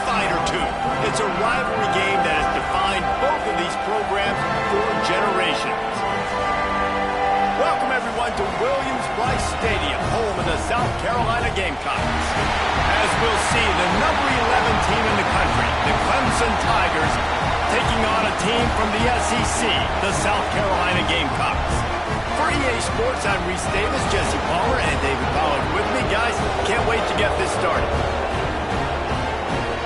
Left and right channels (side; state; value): both; identical; correlation 1.00